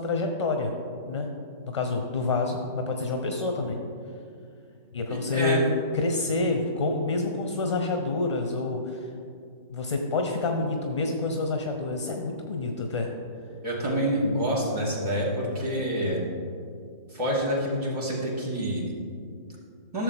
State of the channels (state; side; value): inverted; both; correlation -0.38